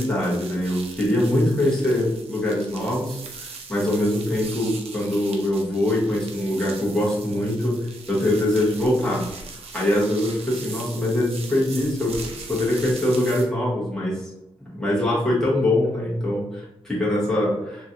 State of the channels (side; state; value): both; normal; correlation 0.79